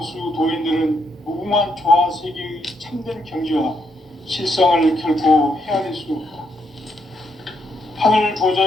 도인들은 무궁한 조화 세계의 참된 경지와 실상을 결코 헤아릴 수 없다. 하늘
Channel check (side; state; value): both; normal; correlation 0.76